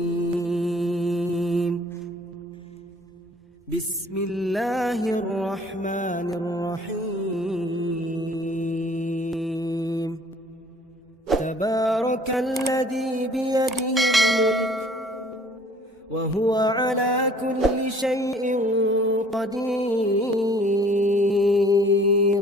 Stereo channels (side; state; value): both; normal; correlation 0.54